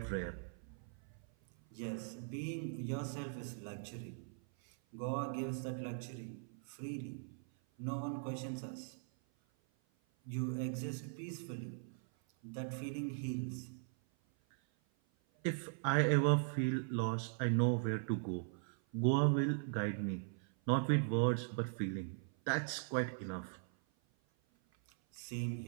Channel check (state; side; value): silent; left; 51 dB below the other